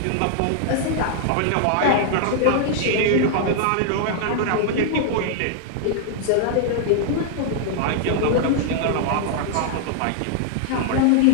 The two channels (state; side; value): different; both; correlation -0.01